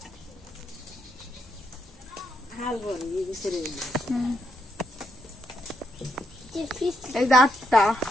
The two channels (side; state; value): both; normal; correlation 0.79